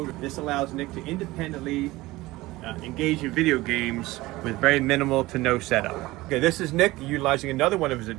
This allows Nick to independently engage in video games with very minimal to no setup. Okay, this is Nick utilizing another one of his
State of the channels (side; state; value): left; quieter; 19.2 dB